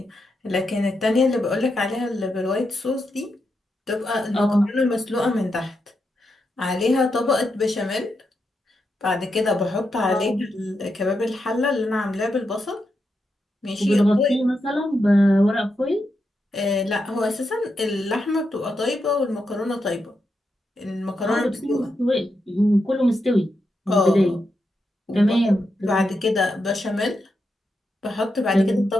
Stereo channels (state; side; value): normal; both; correlation 0.85